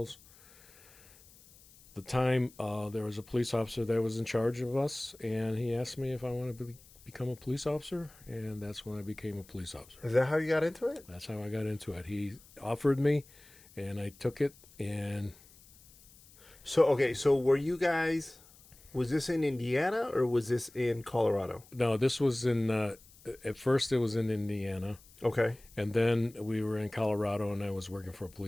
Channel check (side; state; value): left; noise; hiss, 25 dB below the sound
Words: At the time, there was a police officer that was in charge of us, and he asked me if I wanted to become a police officer, and that's when I became a police officer. Is that how you got into it? That's how I got into it. He offered me, and I took it, and So, okay, so were you guys Was this in Indiana or was this in Colorado? No, this was in. At first, it was in Indiana, Okay. and then we were in Colorado, and I was working for a